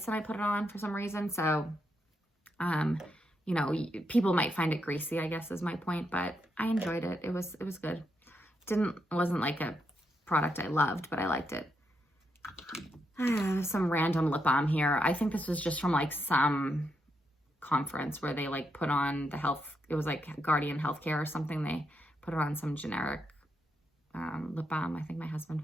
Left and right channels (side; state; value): both; normal; correlation 0.82